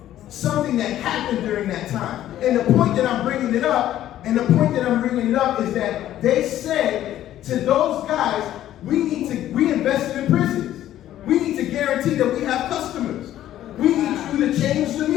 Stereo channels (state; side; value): quieter; right; 12.6 dB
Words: something that happened during that time. And the point that I'm bringing it up is that they said to those guys, we invested in prisons. We need to guarantee that we have customers. We need you to change the